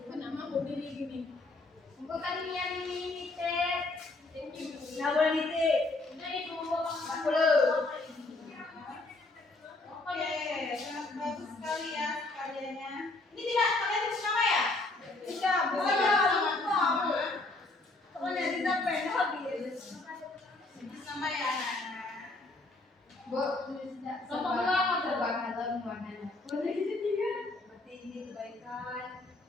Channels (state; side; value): quieter; right; 3.0 dB